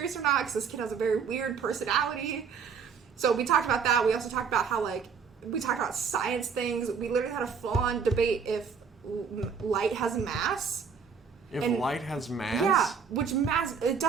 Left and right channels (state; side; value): quieter; left; 6.2 dB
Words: or not, because this kid has a very weird personality. So we talked about that. We also talked about how, like... We talked about science things. We literally had a full-on debate if light has mass. If light has mass? Yeah, which mass... It